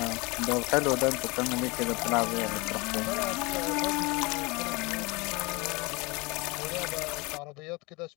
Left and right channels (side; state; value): right; quieter; 25.8 dB